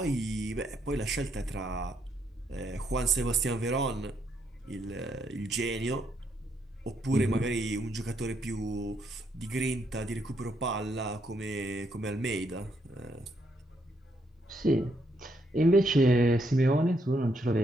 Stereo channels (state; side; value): normal; both; correlation 0.75